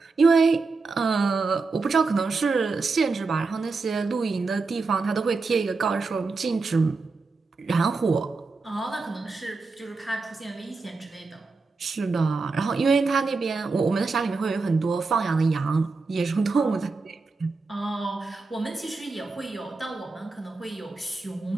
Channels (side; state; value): left; quieter; 4.1 dB